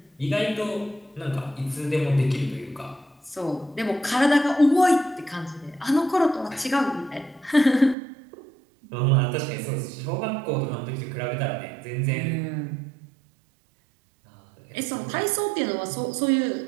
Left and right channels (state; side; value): drops out; left; at 8.0 s